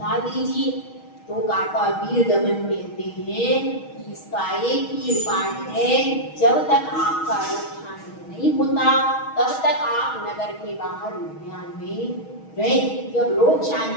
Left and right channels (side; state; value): right; late; 6.3 ms